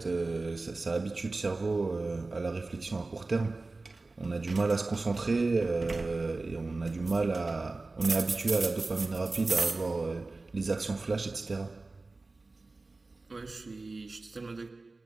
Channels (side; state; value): left; quieter; 3.4 dB